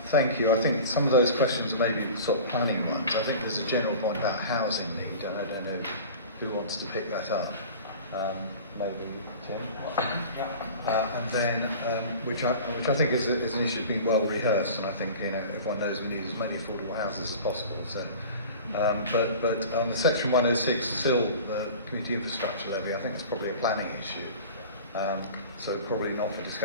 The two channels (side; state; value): both; inverted; correlation -0.38